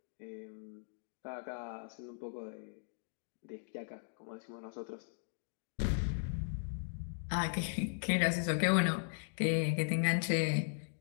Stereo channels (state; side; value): silent; right; digital silence